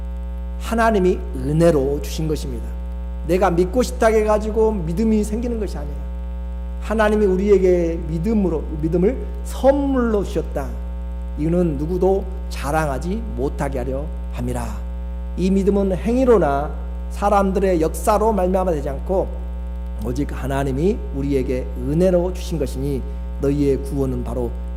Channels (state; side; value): identical; both; correlation 1.00